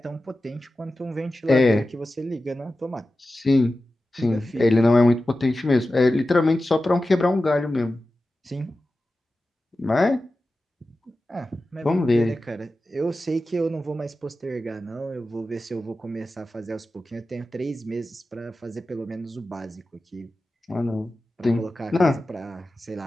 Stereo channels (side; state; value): both; normal; correlation 0.94